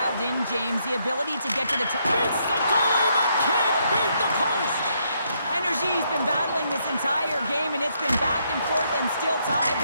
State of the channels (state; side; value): inverted; both; correlation -0.75